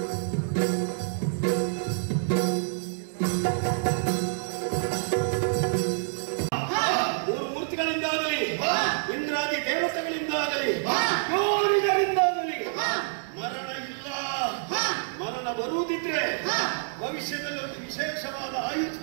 ಇಂದ್ರಾದಿ ದೇವತೆಗಳಿಂದಾಗಲಿ ಯೋರಿಗರಿಂದಾಗಲಿ ಮರಣ ಇಲ್ಲ. ಮರಣ ಬರುವುದಿದ್ರೆ ಭವಿಷ್ಯದಲ್ಲಿ ಒಂದು ವಿಶೇಷವಾದ ಆಯುಧ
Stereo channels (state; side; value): silent; left; digital silence